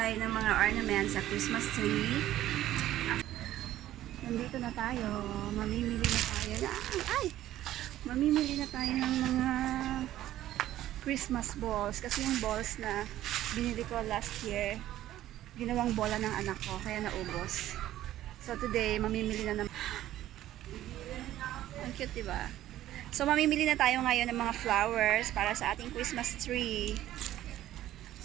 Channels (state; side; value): quieter; left; 13.5 dB